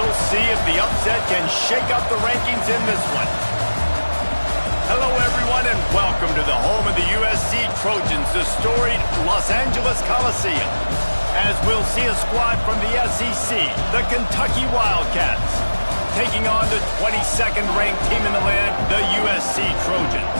see if the upset can shake up the rankings in this one. Hello, everyone, and welcome to the home of the USC Trojans, the storied Los Angeles Coliseum. As we'll see a squad from the SEC, the Kentucky Wildcats, taking on the 22nd ranked team in the land, the USC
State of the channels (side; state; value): both; inverted; correlation -1.00